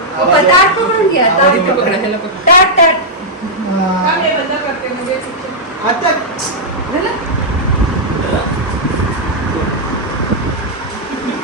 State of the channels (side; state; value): both; normal; correlation -0.07